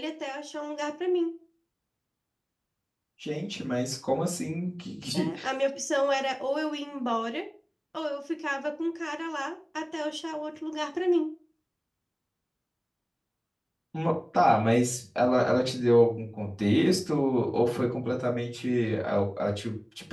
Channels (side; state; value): both; identical; correlation 1.00